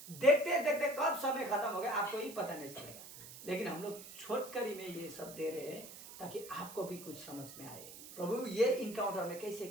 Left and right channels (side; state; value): right; noise; hiss, 14 dB below the sound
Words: देखते देखते कब समय खत्म हो गया आपको ही पता नहीं चलेगा। लेकिन हम लोग छोटकरी में ये सब दे रहे हैं ताकि आपको भी कुछ समझ में आए प्रभु ये इनकाउंटर में कैसे